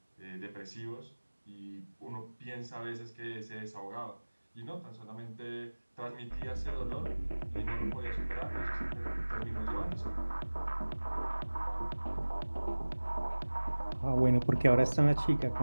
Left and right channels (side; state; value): both; inverted; correlation -1.00